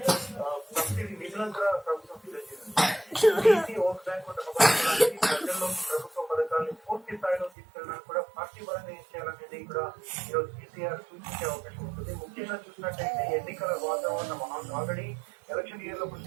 సబ్సిడీ నిధులను కూడా ప్రభుత్వం సిద్ధం చేసింది. బీసీ ఓట్ బ్యాంక్ ప్రజల్లో ప్రభుత్వ పథకాలను పూర్తి స్థాయిలో తీసుకెళ్ళడానికి కూడా పార్టీ పరంగా ఏం చేయాలనేది కూడా ఈరోజు కేసీఆర్ సూచించే అవకాశం ఉంటుంది. ముఖ్యంగా చూసినట్టయితే ఎన్నికల వాతావరణం ఆల్రెడీ ఎలక్షన్ ఇయర్ లో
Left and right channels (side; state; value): left; drops out; at 7.5 s